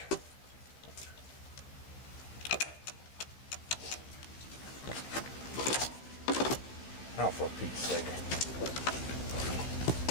Oh, for Pete's sake.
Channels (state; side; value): late; right; 15 ms